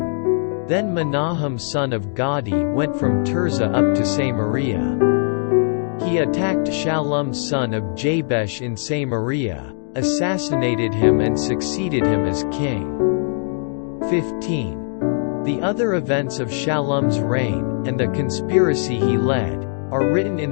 Then Menahem son of Gadi went from Tirzah up to Samaria. He attacked Shallum son of Jabesh in Samaria, assassinated him and succeeded him as king. 15. The other events of Shallum's reign, and the conspiracy he led, are written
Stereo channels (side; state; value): right; silent; digital silence